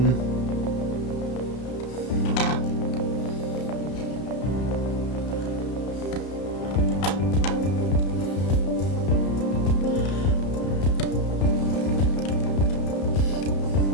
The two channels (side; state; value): right; late; 33 ms